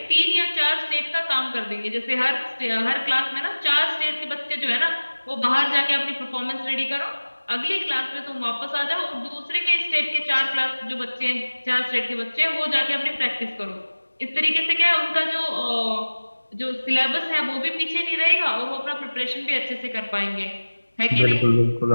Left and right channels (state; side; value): inverted; both; correlation -1.00